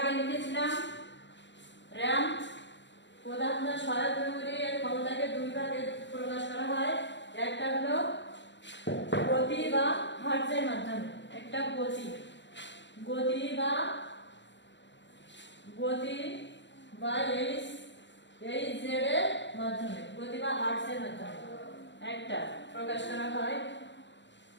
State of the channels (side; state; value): right; late; 0.53 ms